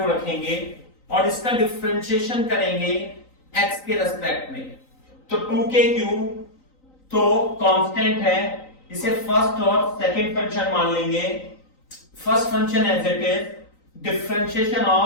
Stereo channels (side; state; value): right; late; 3.9 ms